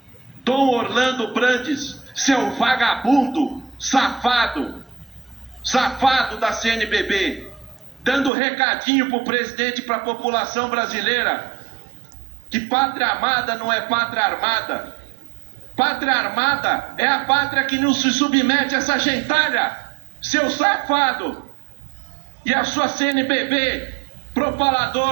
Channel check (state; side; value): drops out; left; at 8.3 s